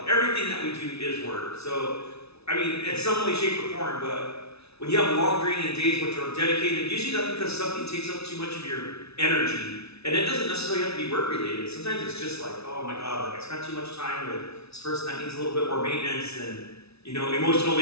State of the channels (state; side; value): late; right; 0.79 ms